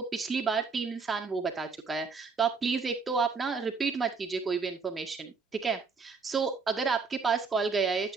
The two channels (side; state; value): left; quieter; 4.9 dB